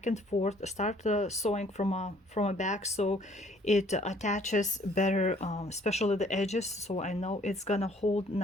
and forth, start sewing from a back, so it attaches better, especially the edges, so I know it's gonna hold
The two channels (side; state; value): both; normal; correlation 0.60